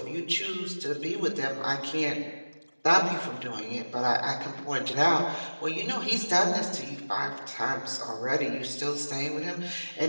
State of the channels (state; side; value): inverted; both; correlation -1.00